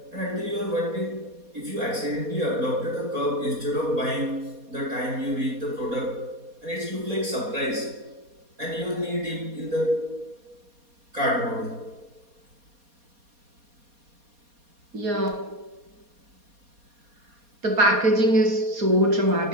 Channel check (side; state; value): left; late; 4.2 ms